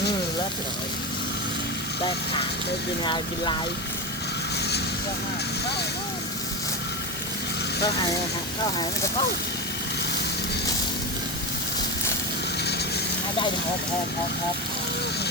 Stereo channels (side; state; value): both; normal; correlation 0.19